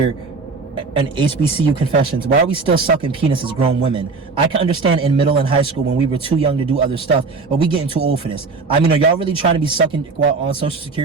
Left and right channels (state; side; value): quieter; left; 4.2 dB